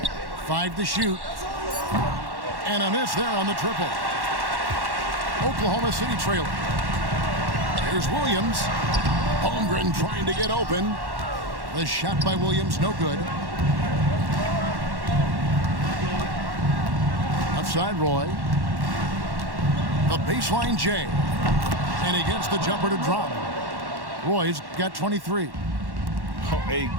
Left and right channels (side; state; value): left; late; 1.1 ms